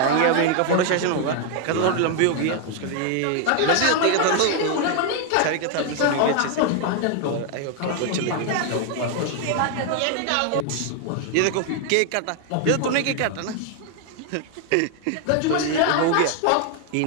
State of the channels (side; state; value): both; different; correlation 0.00